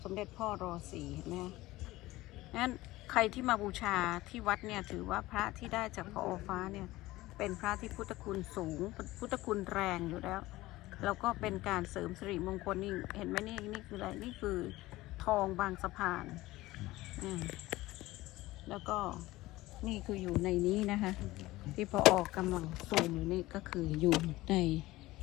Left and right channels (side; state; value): right; quieter; 18.2 dB